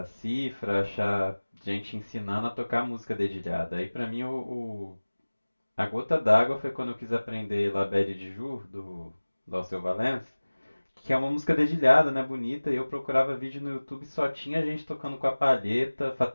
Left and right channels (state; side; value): inverted; both; correlation -1.00